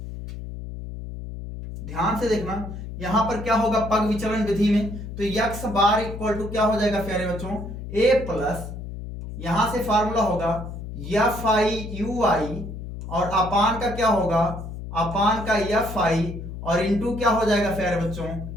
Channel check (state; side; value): noise; left; hum, 9 dB below the sound